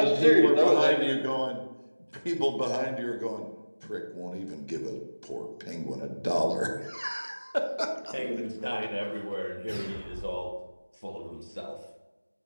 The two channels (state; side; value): inverted; both; correlation -1.00